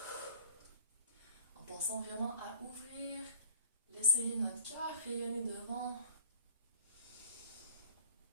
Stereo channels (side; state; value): both; inverted; correlation -0.47